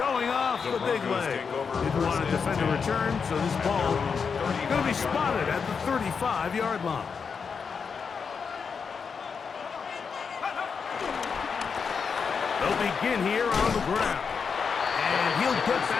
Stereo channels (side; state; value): right; quieter; 5.8 dB